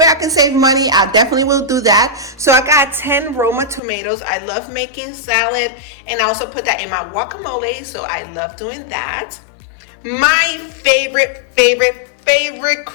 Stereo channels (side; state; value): right; drops out; at 3.8 s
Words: I can save money, I definitely will do that. So I got 10 Roma tomatoes. I love making salad, and I also put that in my guacamole, so I love doing that. My favorite